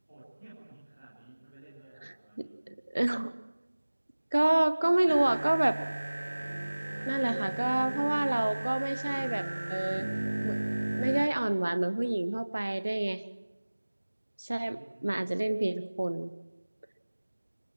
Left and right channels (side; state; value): both; inverted; correlation -1.00